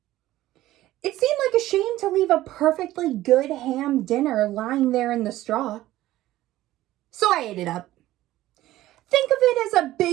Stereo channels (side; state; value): left; quieter; 15.4 dB